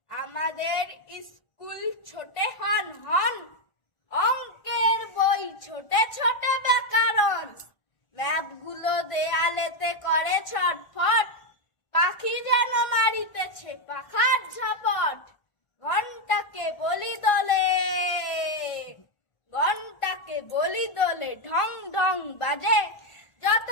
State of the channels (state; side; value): late; right; 1.5 ms